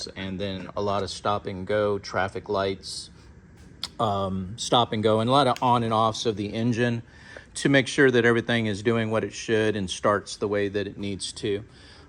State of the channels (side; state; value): both; identical; correlation 1.00